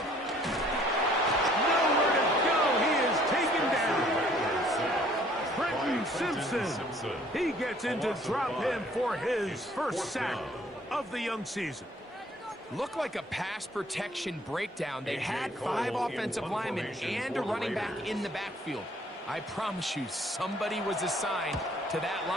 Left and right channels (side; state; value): both; normal; correlation 0.59